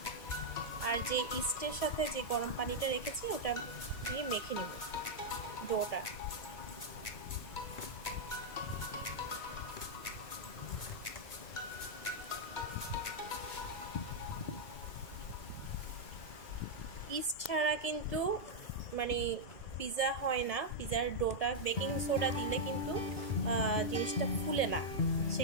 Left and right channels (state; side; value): late; right; 2.2 ms